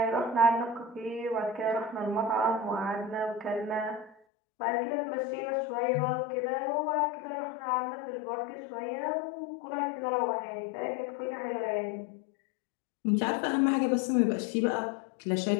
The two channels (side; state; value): right; drops out; at 4.2 s